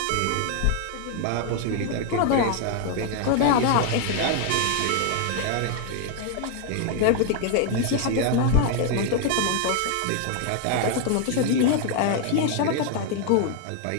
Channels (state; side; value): different; both; correlation 0.01